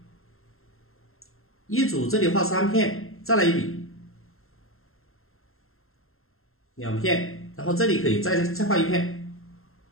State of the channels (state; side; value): late; right; 0.61 ms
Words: 一组这里画3片，再来一笔，2片，然后这里可以再画一片。